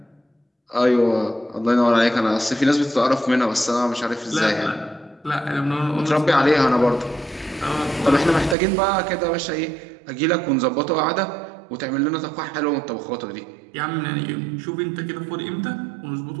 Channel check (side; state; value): left; drops out; at 8.6 s